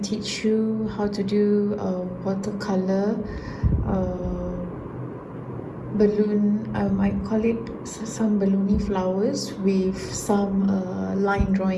to teach you how to do watercolor balloon. I call it some balloony flowers with some line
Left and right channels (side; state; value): both; identical; correlation 1.00